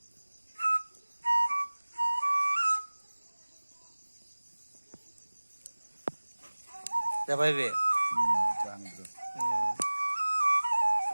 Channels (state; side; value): inverted; both; correlation -1.00